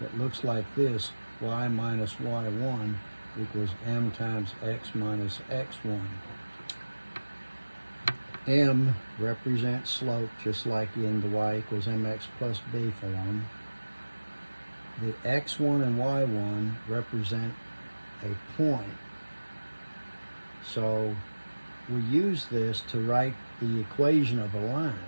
that looks like this: y minus y1 equals m times x minus x1. M represents slope, just like in the y equals mx plus b form. The x1 and y1 represent a point. So we use this to write the equation of a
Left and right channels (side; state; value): both; inverted; correlation -1.00